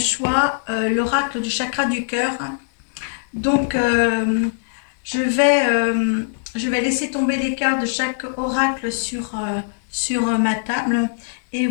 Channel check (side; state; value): right; silent; digital silence